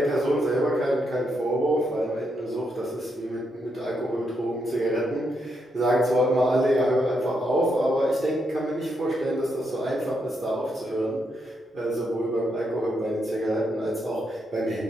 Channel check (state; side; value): normal; both; correlation 0.80